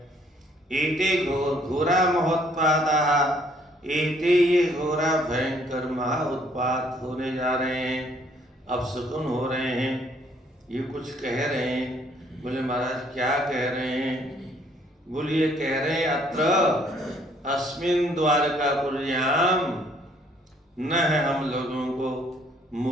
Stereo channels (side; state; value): both; normal; correlation 0.64